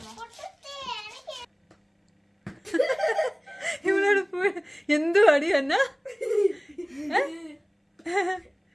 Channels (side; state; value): both; identical; correlation 1.00